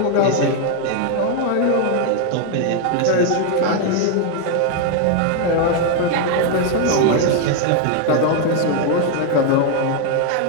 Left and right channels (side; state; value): both; different; correlation 0.01